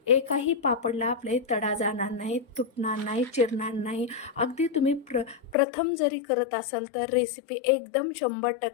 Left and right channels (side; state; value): right; drops out; at 5.6 s